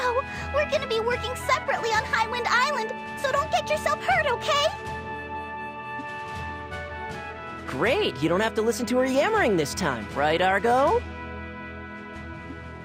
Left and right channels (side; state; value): both; identical; correlation 1.00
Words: we're gonna be working separately on Highwind Island, so don't get yourself hurt, okay? Great, you don't have to listen to her yammering this time, right, Argo?